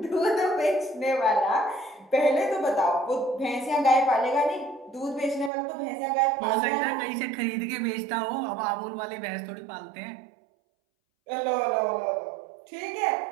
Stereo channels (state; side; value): drops out; left; at 5.5 s